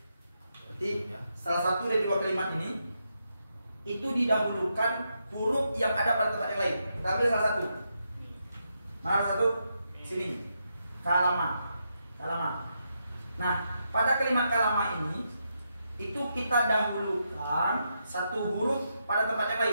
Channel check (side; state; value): both; inverted; correlation -0.82